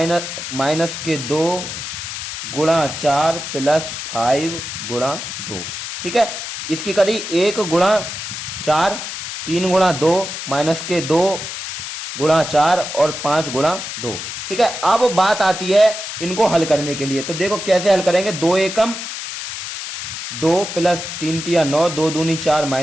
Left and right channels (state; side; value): noise; left; hiss, 7 dB below the sound